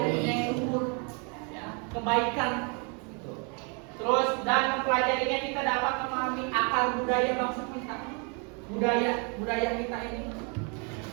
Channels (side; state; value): left; quieter; 35.8 dB